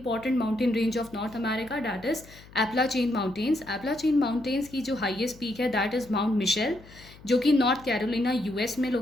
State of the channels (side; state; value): left; noise; hum, 21 dB below the sound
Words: mountain range of North America, that is Appalachian mountains. Appalachian mountains की जो हाईएस्ट पीक है दैट इज़ माउंट मिशेल, जो कि नॉर्थ कैरोलिना यूएस में